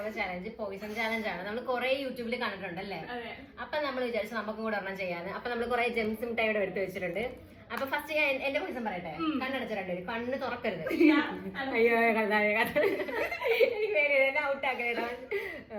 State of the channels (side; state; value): both; identical; correlation 1.00